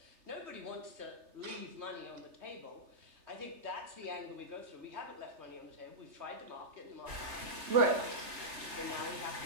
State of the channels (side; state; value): left; late; 3.2 ms